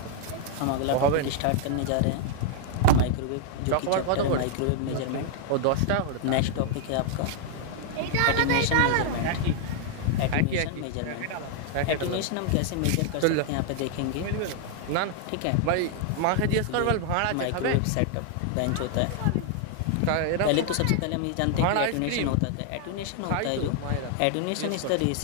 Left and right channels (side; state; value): both; different; correlation 0.00